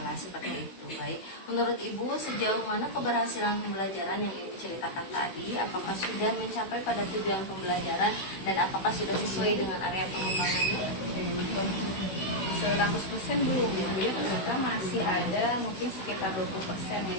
seperti itu. Baik, menurut Ibu sejauh mana keberhasilan pembelajaran yang Ibu ceritakan tadi? Apakah sudah mencapai pada tujuan pembelajaran dan apakah sudah sesuai dengan area pengembangannya? 100% belum ya, kita masih ada mungkin sekitar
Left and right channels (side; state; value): right; late; 16 ms